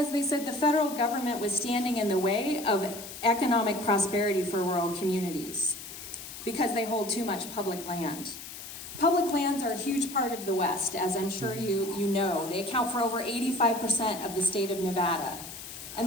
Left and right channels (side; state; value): left; noise; hiss, 12 dB below the sound